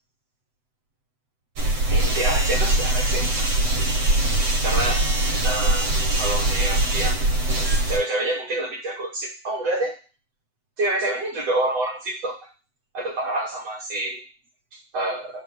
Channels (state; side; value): late; left; 7.9 ms